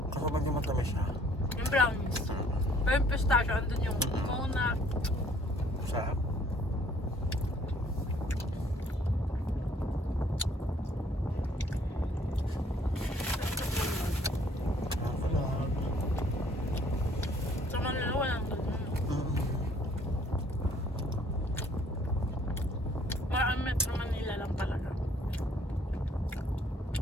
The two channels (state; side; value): normal; both; correlation 0.60